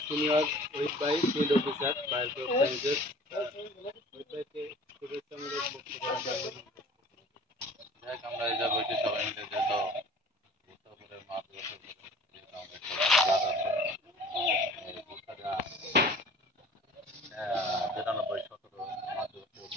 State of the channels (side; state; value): both; normal; correlation 0.47